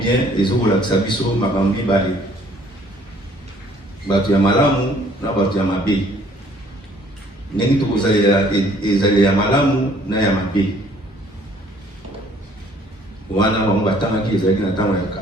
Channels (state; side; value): normal; both; correlation 0.59